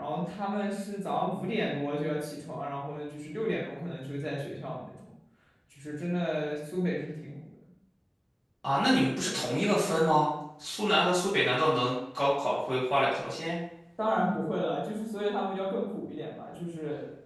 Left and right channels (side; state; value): both; identical; correlation 1.00